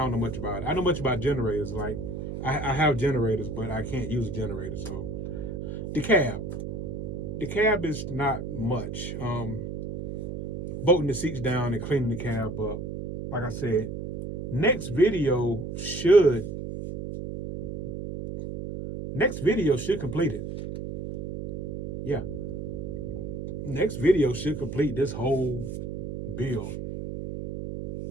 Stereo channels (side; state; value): right; noise; hum, 6 dB below the sound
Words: know much about it. I know much about generators. Like, I have generators, but I can't use a generator. So, the cab is not much. Bolting the seats down and cleaning the cab up. Like I said, next video should complete it. Yeah. Next video should complete this whole build.